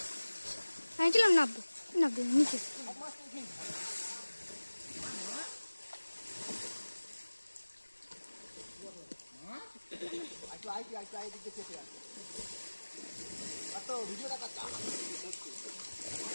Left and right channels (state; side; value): inverted; both; correlation -1.00